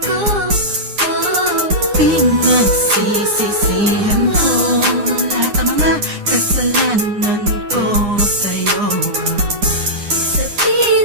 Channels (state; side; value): late; left; 9.8 ms